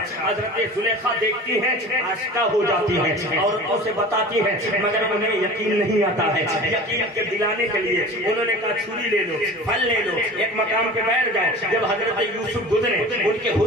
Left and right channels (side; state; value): both; normal; correlation 0.38